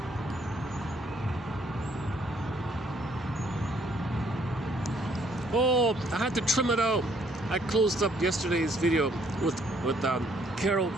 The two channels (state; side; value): normal; both; correlation 0.66